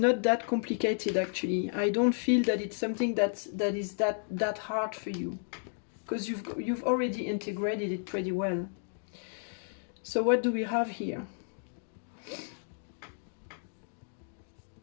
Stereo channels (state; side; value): silent; right; digital silence